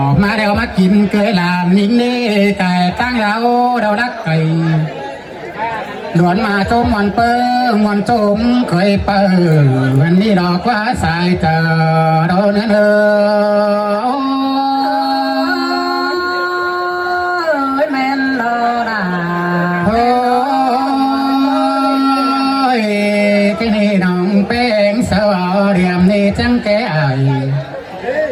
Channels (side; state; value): both; identical; correlation 1.00